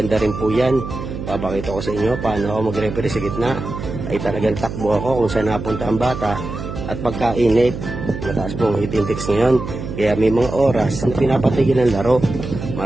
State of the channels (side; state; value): right; noise; hum, 7 dB below the sound